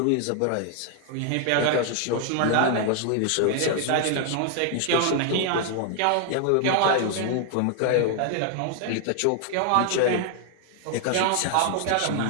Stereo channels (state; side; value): different; both; correlation 0.00